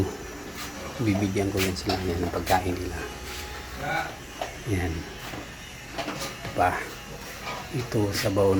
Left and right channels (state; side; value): identical; both; correlation 1.00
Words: bibigyan ko yan sila yan ng pagkain nila. Yan pa, ito sabaw